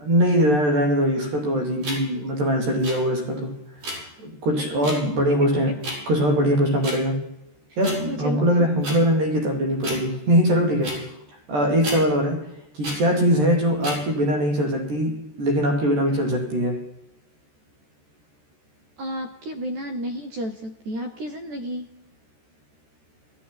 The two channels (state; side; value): late; left; 14 ms